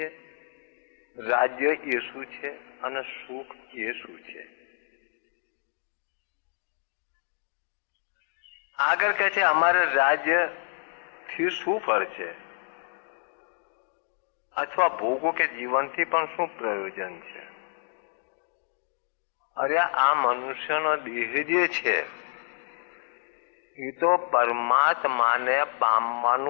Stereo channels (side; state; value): right; silent; 57 dB below the other